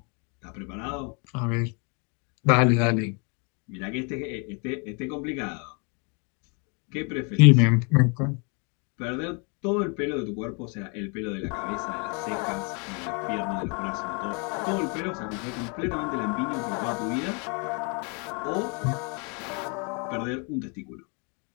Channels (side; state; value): right; quieter; 34.9 dB